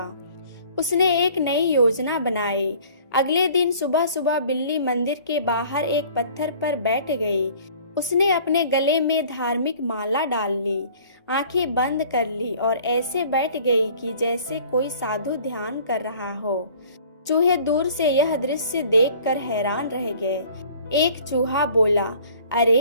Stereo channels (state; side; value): inverted; both; correlation -0.51